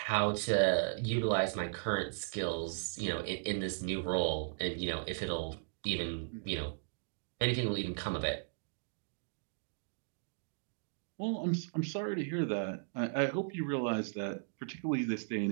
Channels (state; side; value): silent; left; digital silence